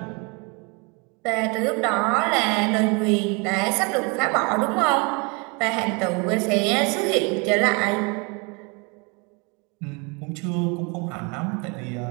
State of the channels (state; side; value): quieter; left; 30.5 dB